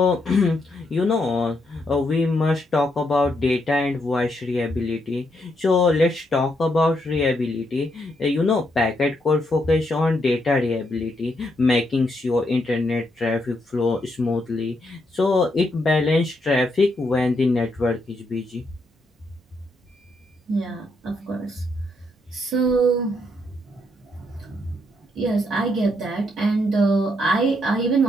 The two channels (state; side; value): normal; both; correlation 0.77